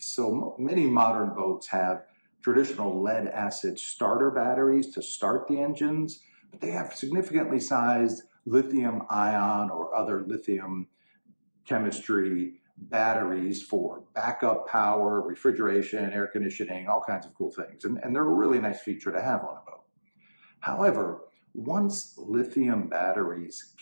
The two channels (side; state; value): both; inverted; correlation -1.00